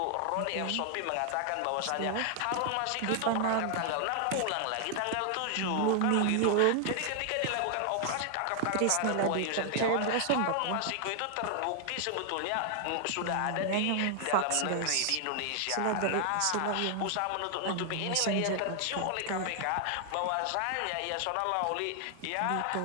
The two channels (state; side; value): different; both; correlation 0.00